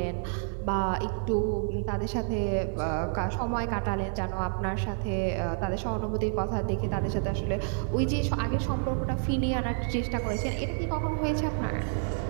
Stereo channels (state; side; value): silent; left; digital silence